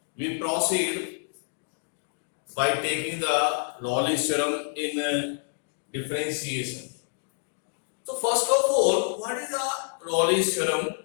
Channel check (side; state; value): right; silent; digital silence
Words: we proceed by taking the Raleigh's theorem in differentiation. So first of all, what is the Raleigh's theorem?